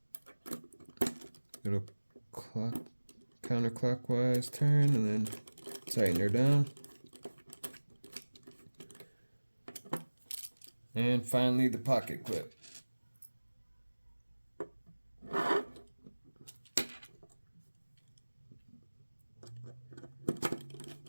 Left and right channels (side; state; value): both; inverted; correlation -1.00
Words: Little counterclockwise turn and then tighten her down. And finally the pocket clip.